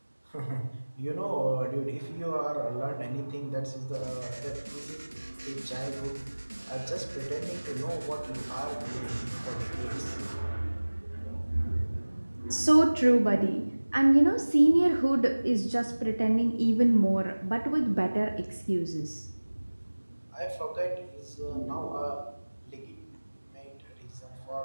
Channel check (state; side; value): inverted; both; correlation -1.00